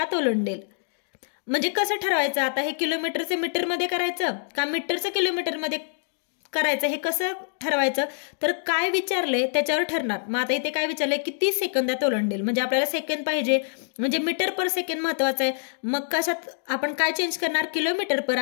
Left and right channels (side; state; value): right; silent; digital silence